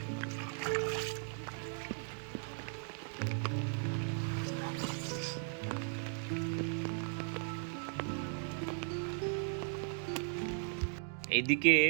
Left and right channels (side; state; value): left; silent; 53 dB below the other